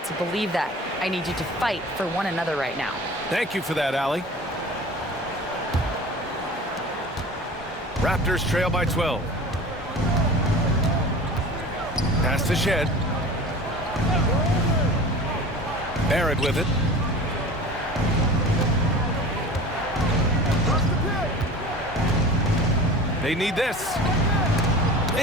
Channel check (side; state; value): both; normal; correlation 0.38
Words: believe that. I need you to fight for one another right now." Thank you for that, Allie. Raptors trail by 12. Pass to Shed. Barrett with it. They need this.